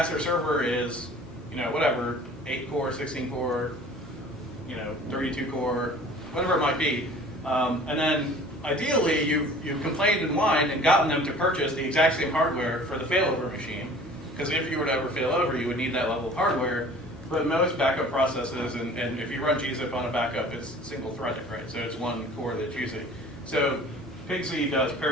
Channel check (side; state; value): right; noise; hum, 24 dB below the sound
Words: server is, whatever, 8 core, 16 core, 32 core, whatever it might be. And then ideally you've complained and whined and gotten them to purchase the exact same hardware for the failover machine. Because if you were to ever fail over, you would need that level of hardware. But most backup processes, and if you run gzip on a backup, it's single-threaded, right? So it's one core that's using. So PGDay does